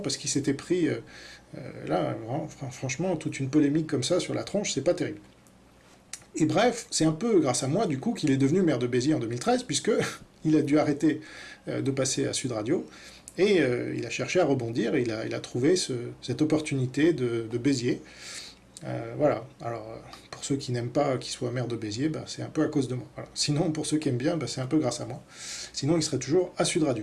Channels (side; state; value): both; identical; correlation 1.00